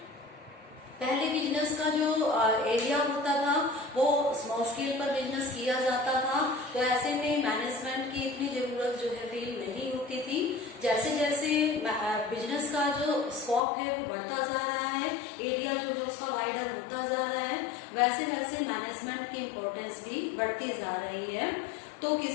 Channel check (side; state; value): right; drops out; at 13.6 s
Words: पहले बिजनेस का जो एरिया होता था वो स्मॉल स्केल पर बिजनेस किया जाता था, तो ऐसे में मैनेजमेंट की इतनी जरूरत जो है फील नहीं होती थी। जैसे जैसे बिजनेस का जो स्कोप है वो बढ़ता जा रहा है, एरिया जो है उसका वाइडर होता जा रहा है, वैसे वैसे मैनेजमेंट की इम्पोर्टेंस भी बढ़ती जा रही है। तो